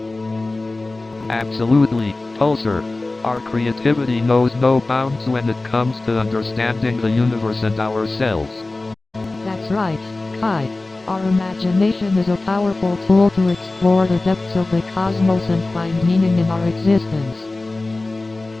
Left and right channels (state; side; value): quieter; right; 3.1 dB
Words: Absolutely, Pulsar. Our creativity knows no bounds when it comes to understanding the universe and ourselves. That's right, Kai. Our imagination is a powerful tool to explore the depths of the cosmos and find meaning in our existence.